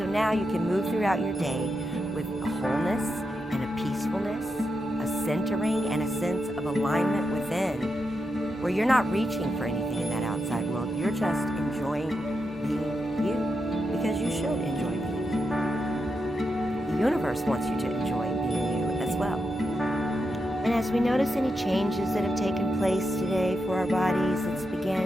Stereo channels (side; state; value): both; normal; correlation 0.86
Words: now you can move throughout your day with a wholeness and a peacefulness, a centering and a sense of alignment within, where you're not reaching for anything in that outside world. You're just enjoying being you, because you should enjoy being you. The universe wants you to enjoy being you as well. And as we notice any changes that have taken place today for our bodies, let's